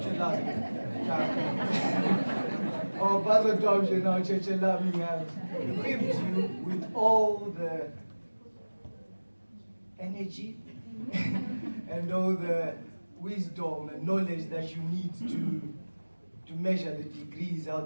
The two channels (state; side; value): inverted; both; correlation -1.00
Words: Our Basil Dobje, now Churchill, have equipped you with all the energy and all the wisdom and knowledge that you need to measure the degrees